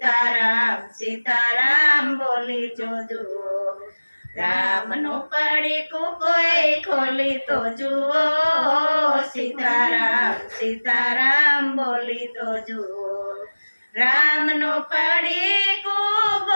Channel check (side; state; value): both; inverted; correlation -1.00